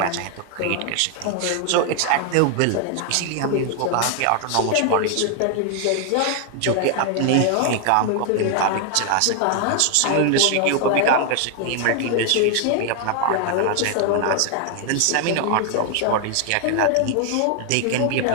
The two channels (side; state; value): both; different; correlation 0.00